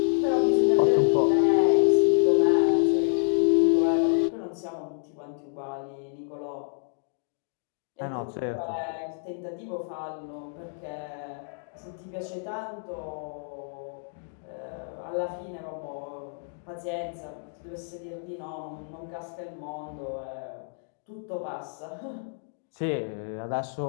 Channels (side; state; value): right; silent; digital silence